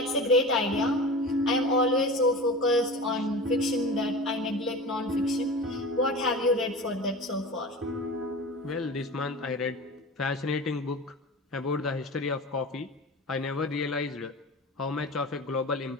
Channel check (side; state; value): both; normal; correlation 0.32